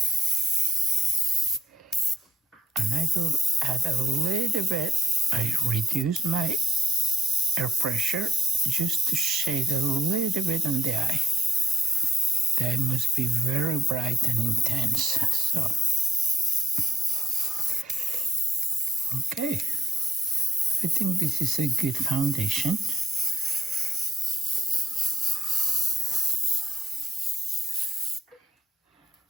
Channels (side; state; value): both; normal; correlation 0.70